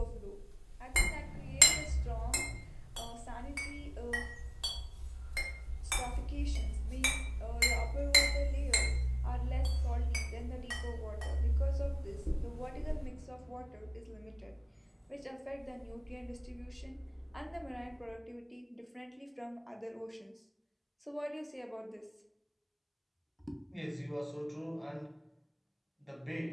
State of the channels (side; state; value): both; identical; correlation 1.00